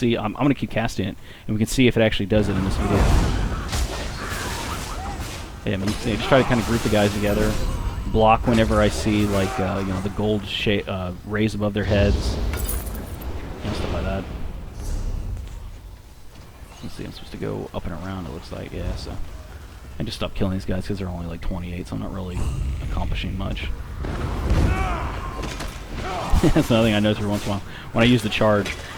I'm going to keep casting it, and we can see if it actually does it in this video. Yeah, I mean, you just try to kind of group the guys together. Block whenever I see, like, you know, the gold rays above their heads. You know, stuff like that. Let's see, I'm supposed to go up and around, it looks like. Yeah, so... I just stopped killing these guys because they're only like 28, so I'm not really accomplishing much. That's another thing I notice every once in a while. When I use the charge,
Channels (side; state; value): both; identical; correlation 1.00